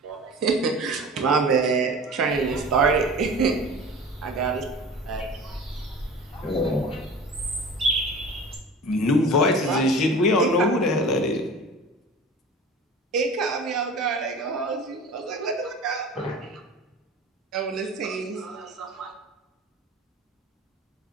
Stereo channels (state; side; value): normal; both; correlation 0.38